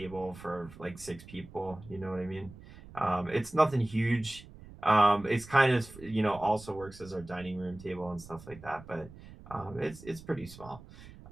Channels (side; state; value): right; noise; rumble, 18 dB below the sound